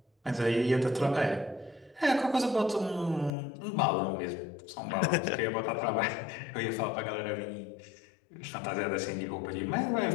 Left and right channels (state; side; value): drops out; right; at 3.3 s